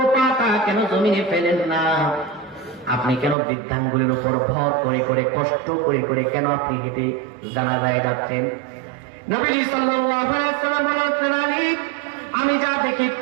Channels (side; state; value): left; drops out; at 3.4 s